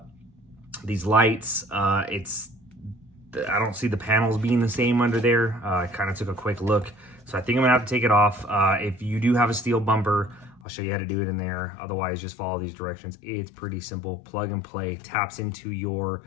I don't see the panels being the same under there. I kind of took a quick look, so I think I'm gonna have to take it off. If you do have a steel bumper, I'll show you how to do it in there. Otherwise, just follow these directions. It's pretty simple. Plug and play. Taps into your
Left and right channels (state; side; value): drops out; right; at 10.6 s